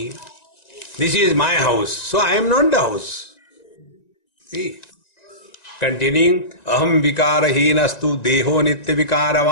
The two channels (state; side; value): late; right; 1.9 ms